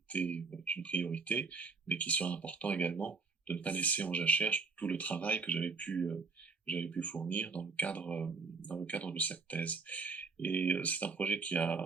une priorité, mais qu'il serait important également de ne pas laisser en jachère tout le travail que j'avais pu fournir dans le cadre de cette thèse. Et c'est un projet qui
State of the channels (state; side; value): quieter; left; 4.6 dB